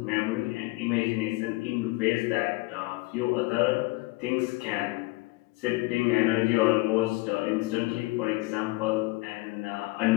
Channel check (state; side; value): quieter; right; 22.6 dB